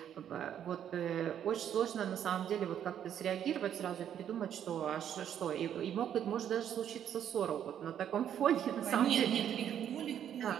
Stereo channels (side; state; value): left; quieter; 9.7 dB